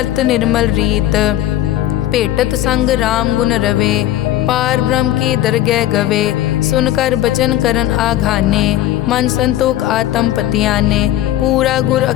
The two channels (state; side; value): quieter; right; 13.4 dB